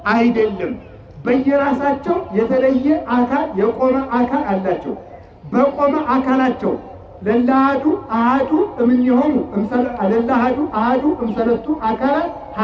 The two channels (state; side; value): identical; both; correlation 1.00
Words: አይደለም። በየራሳቸው የተለየ አካል የቆመ አካል አላቸው። በቆመ አካላቸው ለላሃዱ አሃዱ እምኔሆሙ ለላሃዱ አሃዱ እምሰለስቱ አካላት